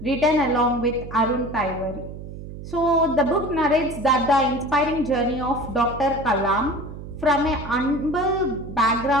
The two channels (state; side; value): noise; right; hum, 11 dB below the sound